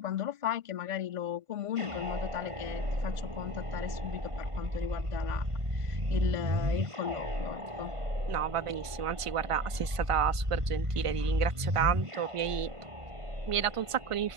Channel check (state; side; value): late; left; 1.5 ms